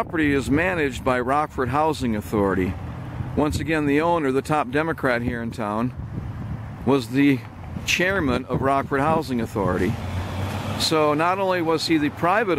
is managed by Rockford Housing Authority. Once again, the owner, the top Democrat here in town, was the chairman of Rockford Housing Authority. So not only was he the private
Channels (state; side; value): identical; both; correlation 1.00